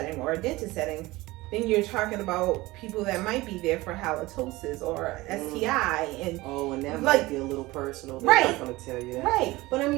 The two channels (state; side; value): quieter; left; 20.0 dB